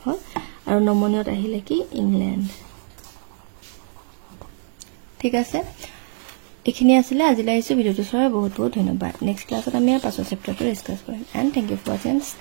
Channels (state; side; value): silent; left; 63 dB below the other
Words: হয় আৰু নমনীয়ত আহিলে কি ইংল্যান্ড ঠিক আছে এখিনি আছিল আজিলৈ আহিছো ভিডিওটো চাই বহুত বহুত ধন্যবাদ নেক্সট ক্লাছত আমি পাছৰ চেপ্টাৰটো ডিসকাস কৰিম and thank you for watching